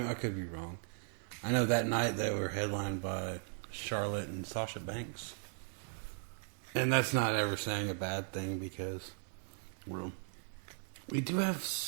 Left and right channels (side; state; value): left; silent; digital silence